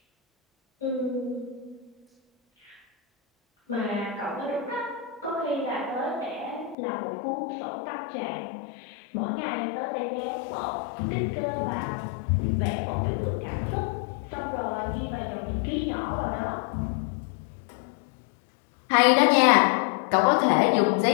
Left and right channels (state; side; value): drops out; right; at 6.8 s